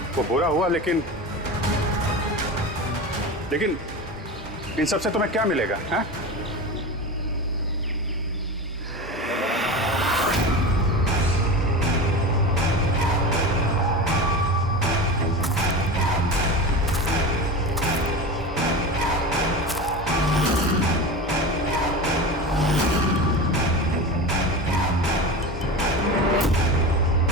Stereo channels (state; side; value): normal; both; correlation 0.27